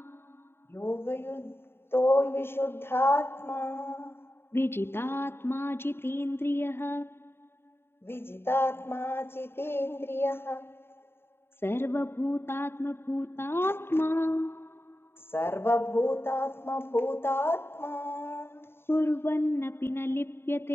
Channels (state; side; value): late; right; 0.11 ms